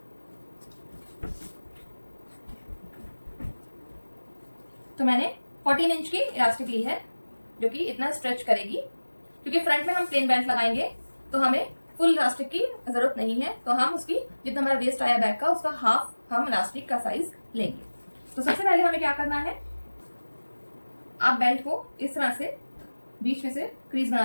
तो मैंने 14 इंच की इलास्टिक ली है जो कि इतना स्ट्रेच करेगी, क्योंकि फ्रंट में हम प्लेन बेल्ट लगाएंगे तो हमें फुल इलास्टिक की जरूरत नहीं है। तो हम उसकी जितना हमारा वेस्ट आया बैक का उसका हाफ हम इलास्टिक का साइज लेंगे। तो सबसे पहले हमें क्या करना है, आप बेल्ट को इस तरह से बीच में से क्रीज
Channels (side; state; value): both; inverted; correlation -1.00